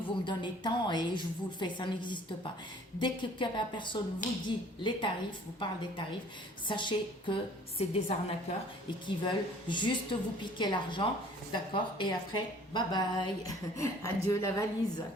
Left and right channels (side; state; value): both; normal; correlation 0.53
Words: vous me donnez tant et je vous le fais, ça n'existe pas. Dès que la personne vous dit les tarifs, vous parle des tarifs, sachez que c'est des arnaqueurs et qui veulent juste vous piquer l'argent, d'accord, et après, bye bye, adieu la valise,